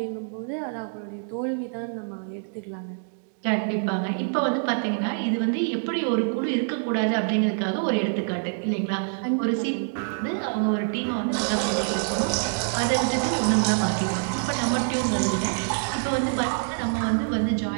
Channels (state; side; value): silent; left; digital silence